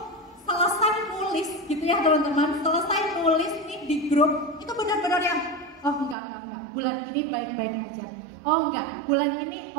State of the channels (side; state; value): left; drops out; at 6.2 s